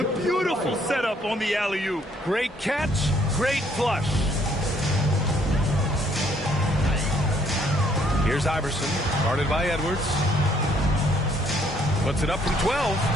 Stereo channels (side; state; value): both; normal; correlation 0.65